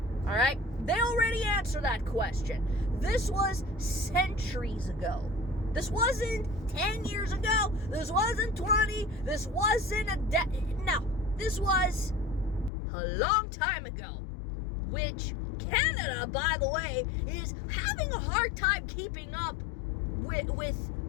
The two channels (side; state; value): right; drops out; at 12.7 s